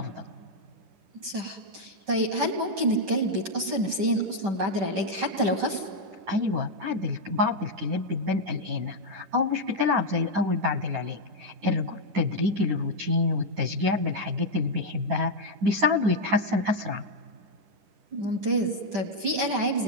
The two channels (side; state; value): left; late; 10 ms